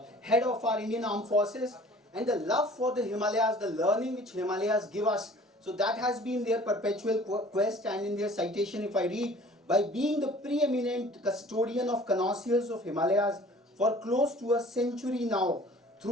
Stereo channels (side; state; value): both; normal; correlation 0.49